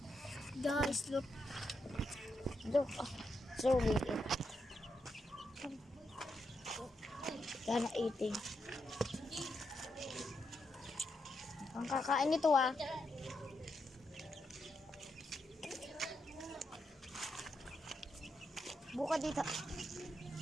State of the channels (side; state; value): both; normal; correlation 0.82